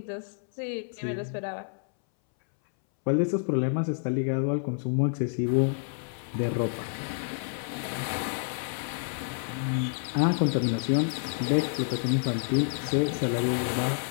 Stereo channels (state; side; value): silent; right; 59 dB below the other